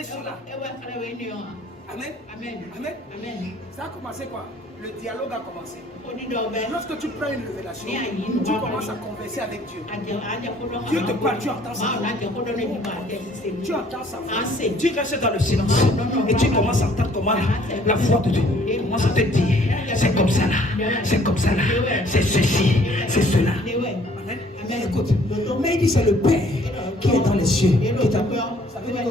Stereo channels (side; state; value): both; normal; correlation 0.59